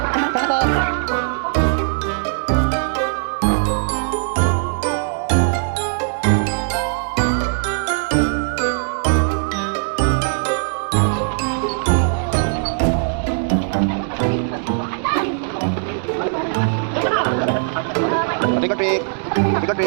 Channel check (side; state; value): left; silent; digital silence